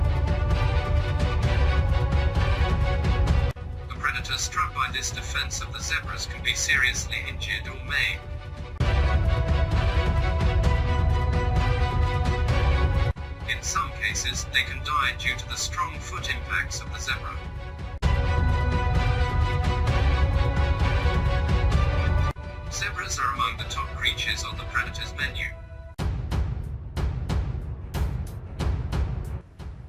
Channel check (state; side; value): identical; both; correlation 1.00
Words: A predator struck by this defense of the zebras can be seriously injured or maimed. In some cases, they can die due to the strong foot impacts of the zebra. Zebras are among the top creatures on the predator's menu.